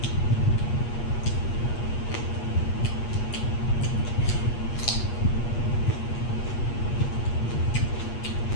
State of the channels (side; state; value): right; late; 8.4 ms